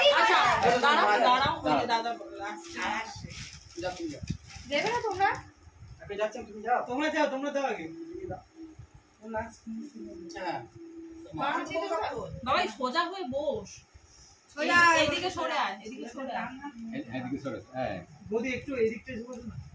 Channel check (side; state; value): both; identical; correlation 1.00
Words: আচ্ছা দাঁড়াও দাদা আসছে যা তুমি যা দেবে না তোমরা আপনি যাচ্ছেন তুমি যাও তোমরা দাও আগে হ্যাঁ বাবা সোজা হয়ে বস সোজা এদিকে সরে আয় এদিকে সরে আয় এদিকে সরে হ্যাঁ বৌদি একটু এদিকটা বসো না